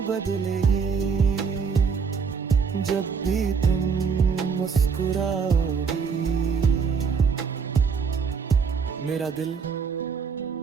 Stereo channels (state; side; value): quieter; left; 5.8 dB